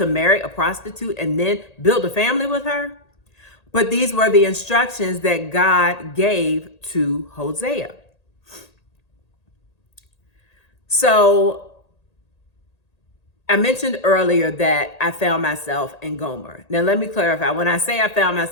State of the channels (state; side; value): late; right; 1.8 ms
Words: marry a prostitute and then build a family with her. But these were the instructions that God gave to Hosea. So I mentioned earlier that I found myself in Gomer. Now, let me clarify. When I say I found